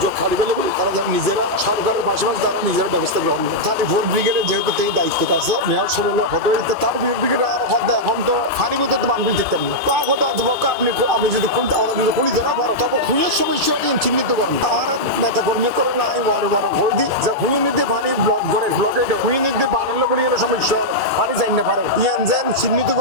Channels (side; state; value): both; normal; correlation -0.07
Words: খালি ফেলে তারা যেন নিজেরা সরকারের পাশাপাশি তারা নিজেরা ব্যবস্থা গ্রহণ করে তাদের ভোট ব্রিগেডের যেহেতু এই দায়িত্বটা আছে মেয়র সরলে হতে হইতে তার ব্রিগেড আর হতে এখন তো ফানিগুলো তো বান্ধবী দেখতেন না তা কথা আপনি যদি পুলিশ ধরা পারেন তবে পুলিশ সমস্যাকে চিহ্নিত করেন আর নেতা কর্মী করে না আমি বড় বড় ভোট দিই যে হুই নিতে পানি ব্লক করে ব্লকে হুই নিতে বানালে করে সমস্যা পানি চাই না পারে ইয়ান যেন চিহ্নিত